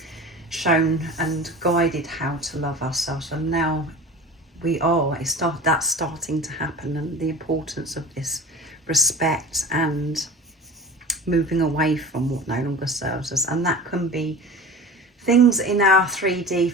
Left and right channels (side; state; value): both; normal; correlation 0.36